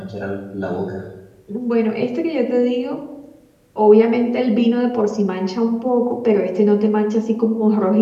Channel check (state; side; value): identical; both; correlation 1.00